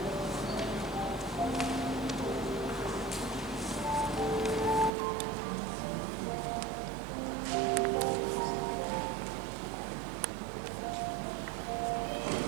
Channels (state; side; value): drops out; left; at 4.9 s